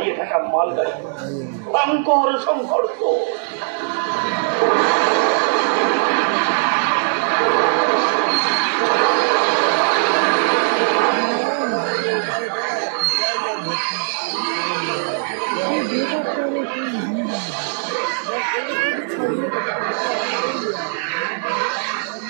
থাকা মালগাড়ি, ভয়ঙ্কর সংঘর্ষ।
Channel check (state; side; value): silent; left; 66 dB below the other